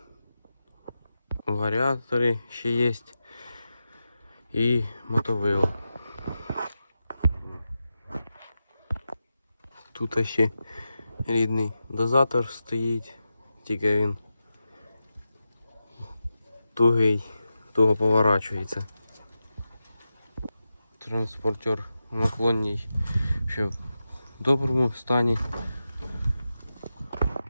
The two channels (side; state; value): both; inverted; correlation -0.91